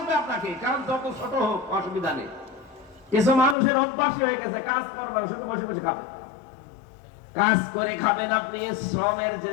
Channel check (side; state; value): right; drops out; at 3.6 s